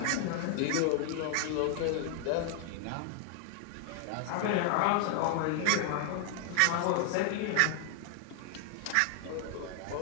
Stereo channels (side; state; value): both; different; correlation 0.00